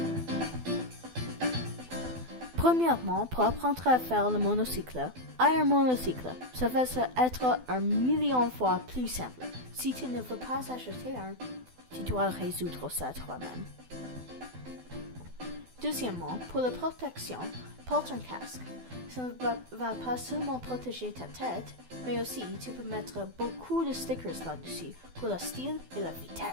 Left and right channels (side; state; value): left; late; 12 ms